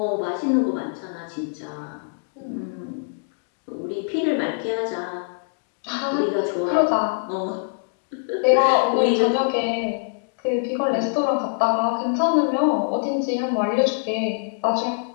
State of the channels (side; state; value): right; silent; digital silence